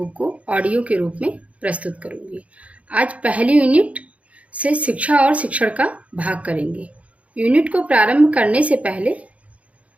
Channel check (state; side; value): late; left; 0.065 ms